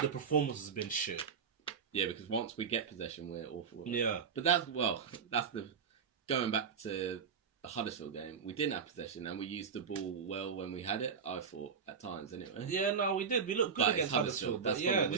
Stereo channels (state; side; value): quieter; left; 6.4 dB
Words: The performance has been shit. Yeah, because once we get possession, we're awful. Yeah. But going back to the Huddersfield game, we didn't have possession and we used the ball well when we had it, I thought, at times anyway. Yeah, no, we did. We looked good against Huddersfield. That's